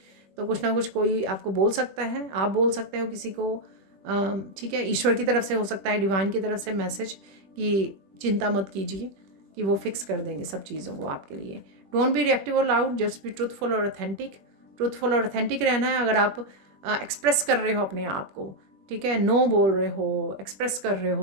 तो कुछ ना कुछ कोई आपको बोल सकता है, आप बोल सकते हो किसी को, ठीक है। ईश्वर की तरफ से हो सकता है, डिवाइन की तरफ से मैसेज कि चिंता मत कीजिए, कि वो फिक्स कर देंगे सब चीज़ों को आपके लिए। डोंट बी रिएक्टिव और लाउड, जस्ट बी ट्रूथफुल और ऑथेंटिक। ट्रूथफुल और ऑथेंटिक रहना है। अगर आप एक्सप्रेस कर रहे हो अपने आप को, ठीक है, नो बोल रहे हो, एक्सप्रेस कर रहे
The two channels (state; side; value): late; left; 21 ms